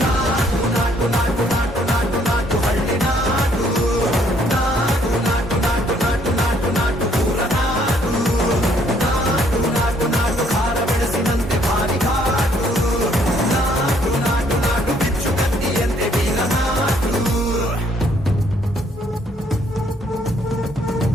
ನಾಟು ನಾಟು ನಾಟು ನಾಟು ನಾಟು ನಾಟು ಹಳ್ಳಿ ನಾಟು ನಾಟು ನಾಟು ನಾಟು ನಾಟು ನಾಟು ನಾಟು ಊರ ನಾಟು ನಾಟು ನಾಟು ನಾಟು ಖಾರ ಬೆಳೆಸಿದಂತೆ ಭಾರಿ ಘಾಟು ನಾಟು ನಾಟು ನಾಟು ಬಿಚ್ಚು ಕತ್ತಿಯಂತೆ ಬೀರ ನಾಟು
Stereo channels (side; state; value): both; normal; correlation 0.66